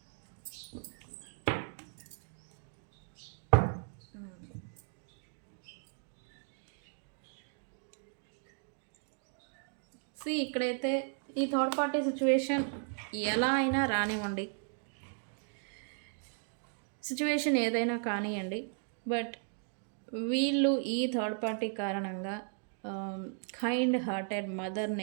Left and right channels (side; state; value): left; silent; 54 dB below the other